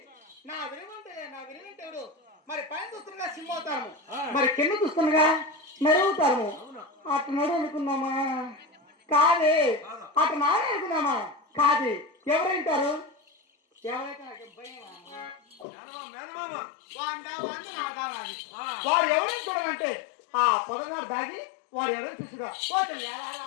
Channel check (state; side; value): drops out; right; at 15.7 s